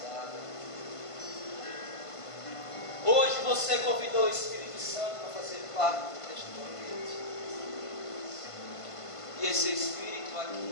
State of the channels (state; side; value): late; right; 1.5 ms